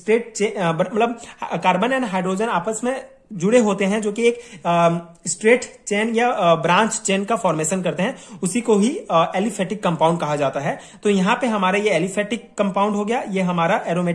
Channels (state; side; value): identical; both; correlation 1.00